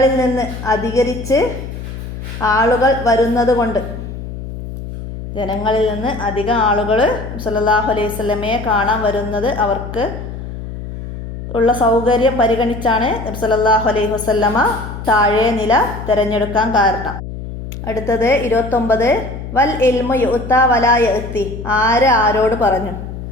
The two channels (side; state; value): left; noise; hum, 9 dB below the sound